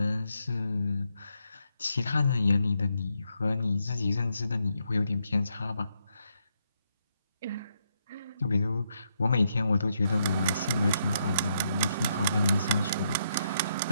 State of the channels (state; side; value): inverted; both; correlation -0.78